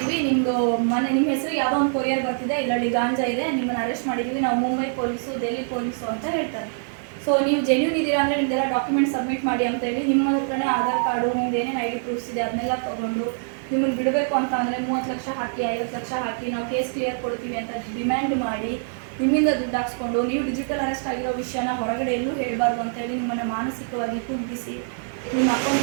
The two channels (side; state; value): left; silent; digital silence